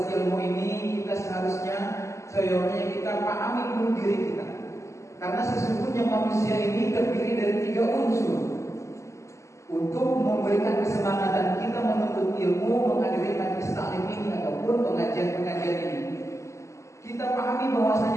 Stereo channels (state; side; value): late; right; 0.14 ms